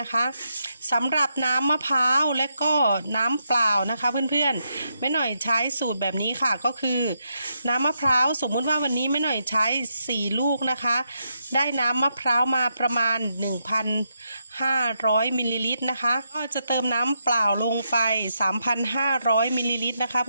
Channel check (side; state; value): both; inverted; correlation -0.82